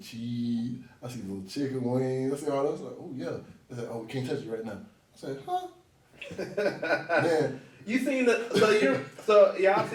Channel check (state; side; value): identical; both; correlation 1.00